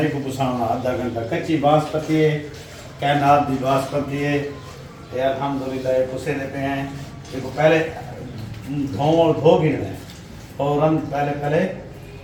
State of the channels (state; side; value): identical; both; correlation 1.00